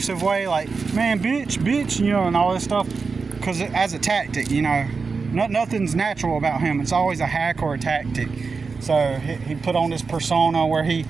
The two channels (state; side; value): quieter; left; 4.8 dB